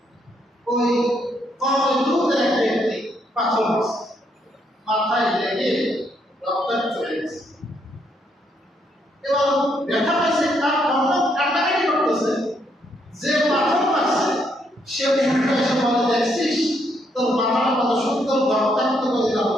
ওই কওমে লূতের এক ব্যক্তি পাথর মাথায় লেগে রক্তাক্ত হয়ে গেছে। এবং ব্যথা পাইছে, তার কান্নাকাটি করতেছে, যে পাথর মারছে সে এসে বলে, দেখছিস তোর মাথাটা কত সুন্দর রক্তাক্ত করে দিলাম,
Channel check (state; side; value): normal; both; correlation 0.74